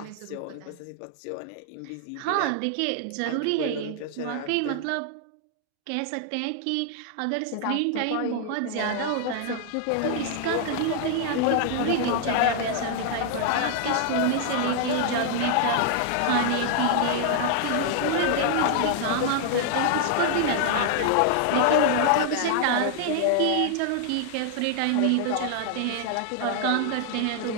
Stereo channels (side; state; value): both; different; correlation 0.00